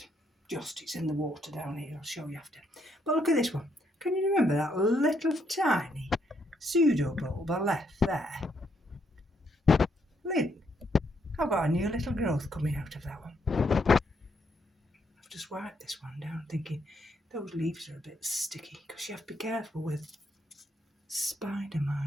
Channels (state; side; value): normal; both; correlation 0.74